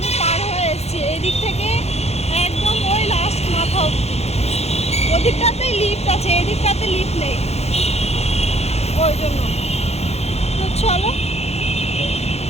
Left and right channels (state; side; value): late; right; 0.31 ms